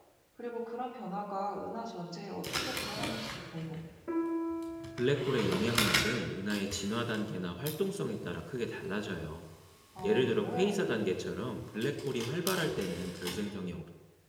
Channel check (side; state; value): both; identical; correlation 1.00